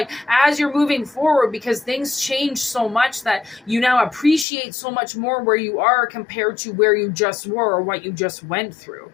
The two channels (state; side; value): drops out; right; at 4.5 s